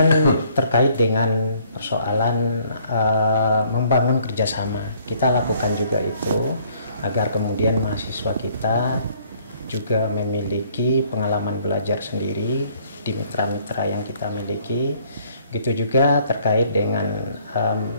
terkait dengan persoalan membangun kerjasama, kita lakukan juga itu agar kemudian mahasiswa kita juga memiliki pengalaman belajar sendiri di mitra-mitra yang kita miliki. Begitu juga terkait dengan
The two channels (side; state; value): both; inverted; correlation -0.61